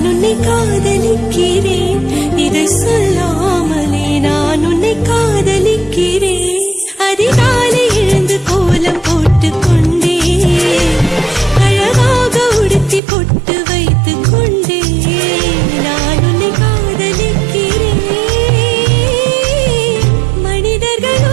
உன்னை காதலிக்கிறேன் இதை சொல்லாமலே நான் உன்னை காதலிக்கிறேன் அதிகாலை எழுந்து கோலம் போட்டுக் கொண்டே அழகாக உடுத்தி பொட்டு வைத்துக் கொண்டே நான் உன்னை காதலிக்கிறேன் மனிதர்கள்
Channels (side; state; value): left; drops out; at 13.0 s